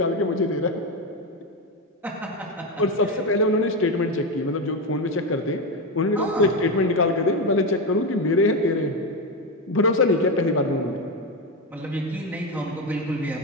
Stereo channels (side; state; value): both; normal; correlation 0.12